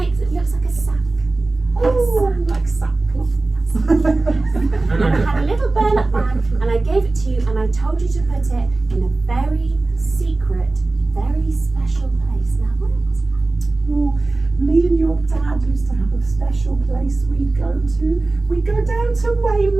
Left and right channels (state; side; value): quieter; left; 3.2 dB